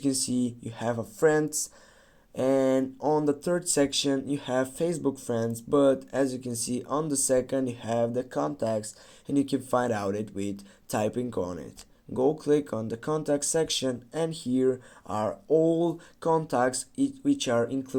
can see you have a friends, and on the third section you have Facebook friends, but as you can see on the second you have the contacts, and you can find out it with typing on it. Go click on the contact section, and here are all contacts which are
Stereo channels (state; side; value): identical; both; correlation 1.00